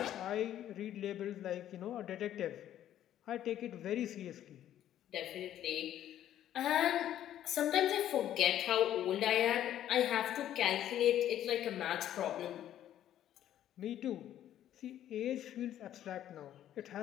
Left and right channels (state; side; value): quieter; right; 11.6 dB